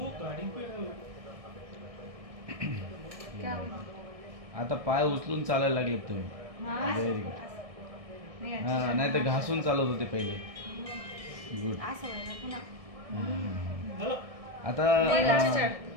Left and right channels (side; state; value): left; late; 1.6 ms